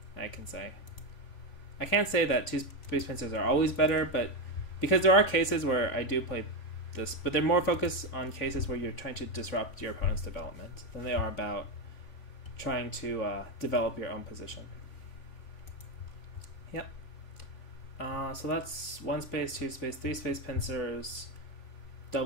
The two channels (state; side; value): late; right; 3.5 ms